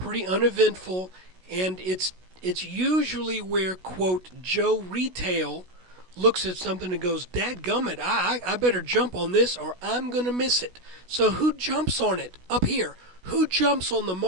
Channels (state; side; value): late; left; 16 ms